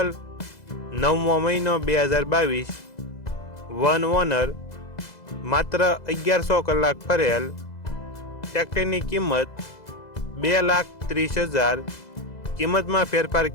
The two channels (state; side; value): late; right; 2.0 ms